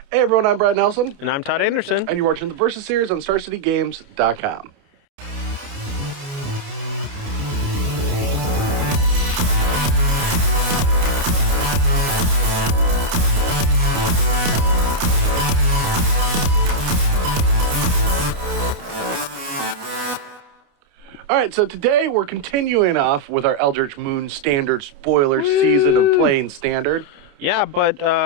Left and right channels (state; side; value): late; left; 28 ms